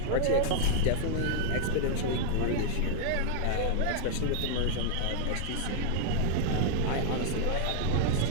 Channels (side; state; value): both; different; correlation 0.00